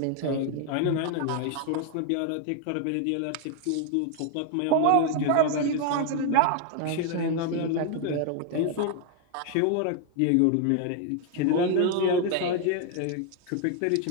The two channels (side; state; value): both; different; correlation 0.00